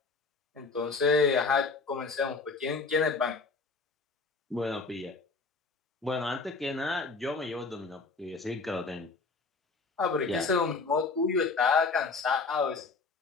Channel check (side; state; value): right; quieter; 4.2 dB